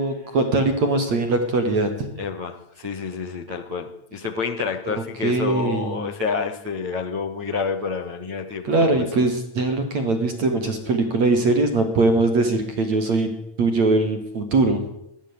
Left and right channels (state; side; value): late; left; 8.9 ms